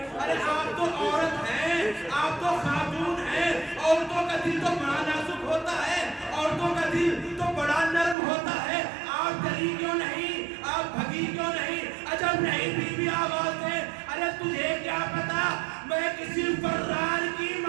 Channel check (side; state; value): left; drops out; at 8.2 s